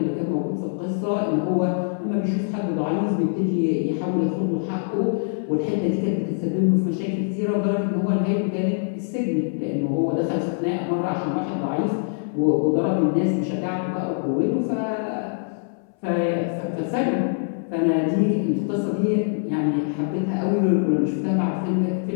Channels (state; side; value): silent; right; 63 dB below the other